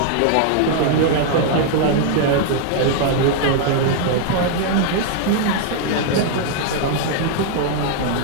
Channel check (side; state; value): both; different; correlation 0.00